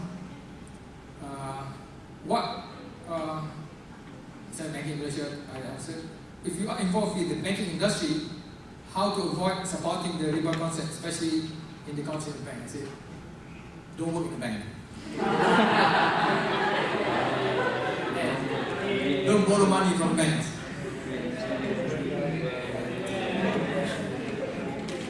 Islamic banking in Malaysia, I answered. If you are involved in the banking industry, how to avoid supporting the riba concept, especially in the council bank? I said, don't work in the bank. Don't borrow money from banks.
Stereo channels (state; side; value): identical; both; correlation 1.00